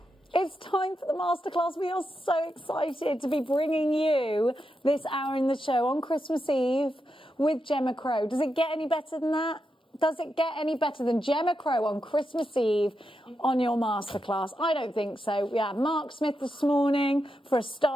It's time for the masterclass. We are so excited to be bringing you this hour in the show on Christmas Eve with Gemma Crow. Does it get any better than that? Does it get any better than Gemma Crow on Christmas Eve on your masterclass? I don't think so. We had Mark Smith this morning for a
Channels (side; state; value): both; normal; correlation 0.86